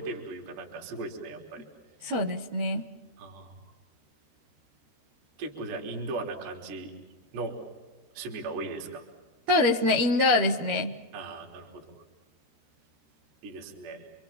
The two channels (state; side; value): late; left; 13 ms